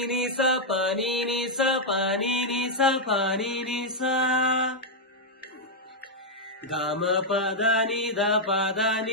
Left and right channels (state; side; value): normal; both; correlation -0.03